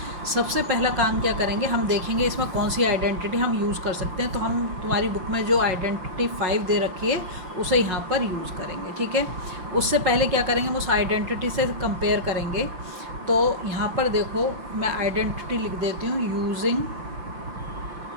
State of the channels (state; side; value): late; left; 5.7 ms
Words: सबसे पहला काम क्या करेंगे, हम देखेंगे इसमें कौन सी आइडेंटिटी हम यूज़ कर सकते हैं। तो हम तुम्हारी बुक में जो आइडेंटिटी 5 दे रखी है उसे यहाँ पर यूज़ करेंगे। ठीक है, उससे पहले क्या करेंगे, हम उस आइडेंटिटी से कंपेयर करेंगे। तो यहाँ पर देखो, मैं आइडेंटिटी लिख देती हूँ। यूजिंग